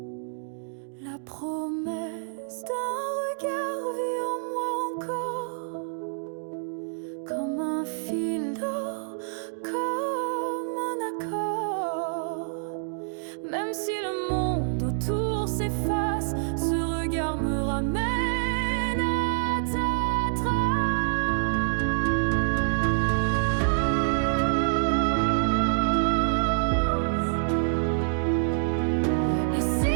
La promesse d'un regard vit en moi encore, comme un fil d'or, comme un accord. Même si le monde autour s'efface, ce regard me ramène à ta trace. Et si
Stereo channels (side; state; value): left; silent; digital silence